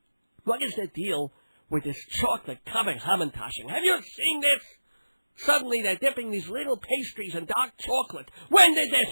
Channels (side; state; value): both; inverted; correlation -1.00